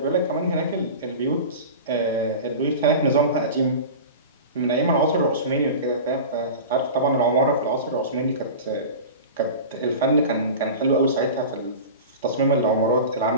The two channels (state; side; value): inverted; both; correlation -0.32